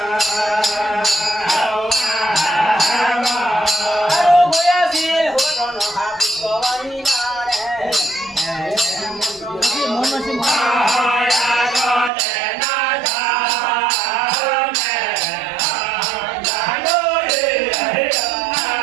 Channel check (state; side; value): drops out; left; at 12.1 s